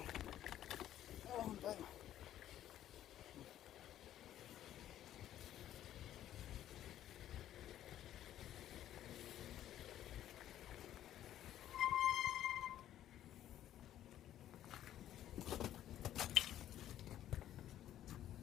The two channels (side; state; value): right; quieter; 12.0 dB